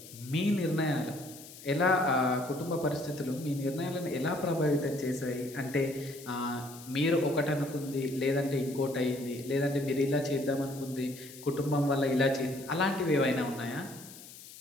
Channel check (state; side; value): noise; left; hiss, 17 dB below the sound